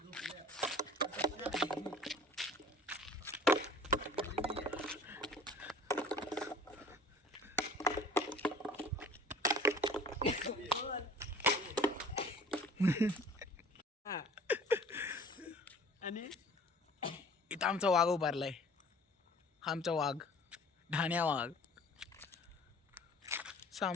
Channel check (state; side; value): normal; both; correlation 0.48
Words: आणि इथं आमचा वाघ उभारलाय. आमचा वाघ, ढाण्या वाघ,